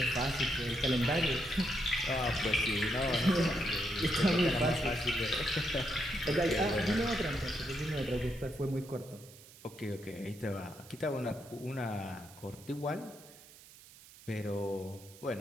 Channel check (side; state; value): right; noise; hiss, 21 dB below the sound